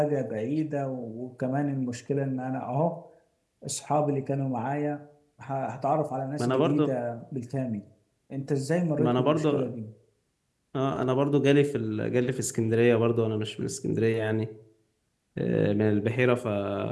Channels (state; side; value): identical; both; correlation 1.00